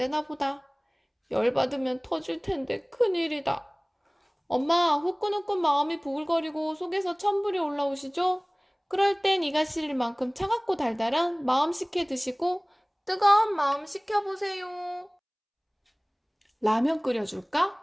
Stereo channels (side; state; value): both; identical; correlation 1.00